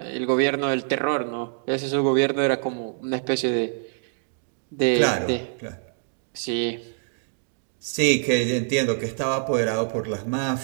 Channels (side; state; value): left; silent; digital silence